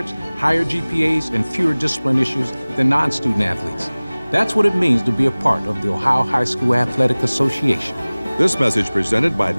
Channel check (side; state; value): both; inverted; correlation -1.00